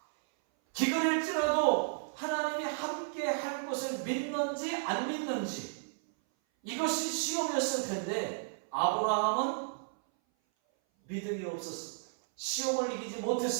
기근일지라도 하나님이 함께 할 것을 믿는지 안 믿는지 이것이 시험이었을 텐데 아브라함은 믿음이 없었습니다. 시험을 이기지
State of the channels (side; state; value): left; silent; 56 dB below the other